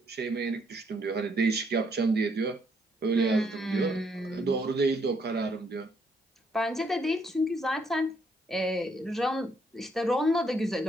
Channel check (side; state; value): both; normal; correlation 0.71